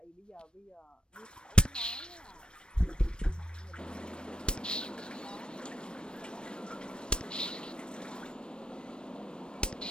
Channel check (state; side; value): late; right; 0.053 ms